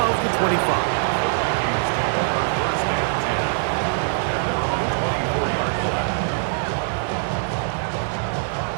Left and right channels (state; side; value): silent; left; digital silence